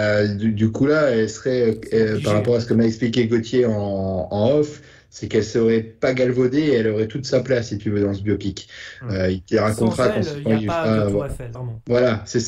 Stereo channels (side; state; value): both; identical; correlation 1.00